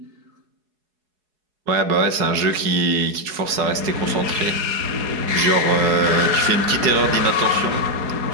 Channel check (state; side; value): late; left; 4.7 ms